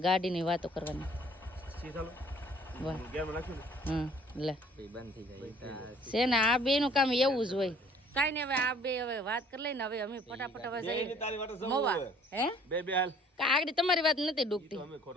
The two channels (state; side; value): normal; both; correlation 0.56